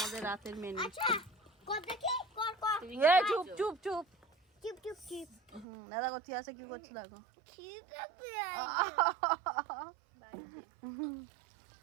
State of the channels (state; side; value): drops out; left; at 5.7 s